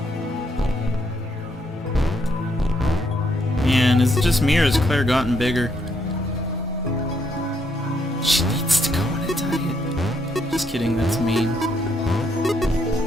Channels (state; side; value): normal; both; correlation 0.74